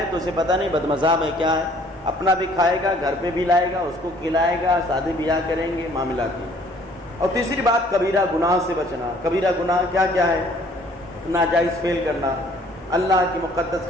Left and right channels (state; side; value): normal; both; correlation 0.58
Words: تو اسے پتہ نہیں بد مذہب ہے کیا ہے، اپنا بھی کھائے گا، گھر پہ بھی لائے گا، اس کو کھلائے گا، شادی بیاہ کریں گے، معاملات کی۔ اور تیسری بات کبیرہ گناہ سے بچنا۔ کبیرہ گناہ کیا کیا ہے؟ ناجائز فعل کرنا، اللہ کی مقدس